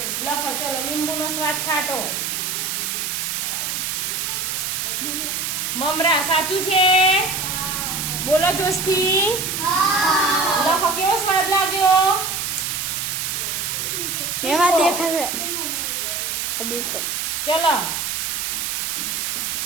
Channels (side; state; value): right; noise; hiss, 1 dB below the sound